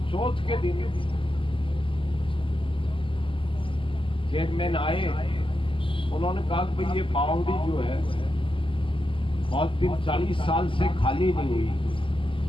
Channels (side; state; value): right; late; 0.25 ms